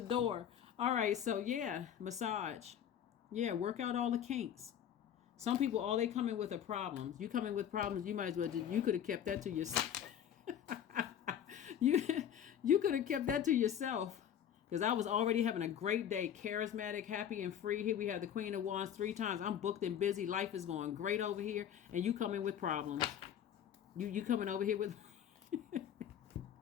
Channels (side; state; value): right; quieter; 9.4 dB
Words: All right, so yeah, massage. Yeah, work out all the kinks. Some people, all they come in with are problems. You come in with problems, you might as well you could have kept that to yourself. you could have kept that to yourself. Because I was already having a great day, charismatic, happy, and free. Here we have the Queen of Wands 3 times. I'm booked and busy. Life is going great over here. And you come in with problems. You coming over here with...